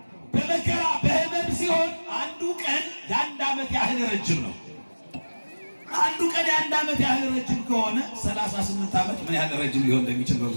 በመከራ በህመም ሲሆን አንዱ ቀን የ1 ዓመት ያህል ረጅም ነው። አንዱ ቀን የ1 ዓመት ያህል ረጅም ከሆነ 38 ዓመት ምን ያህል ረጅም ሊሆን እንደሚችል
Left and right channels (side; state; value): both; inverted; correlation -1.00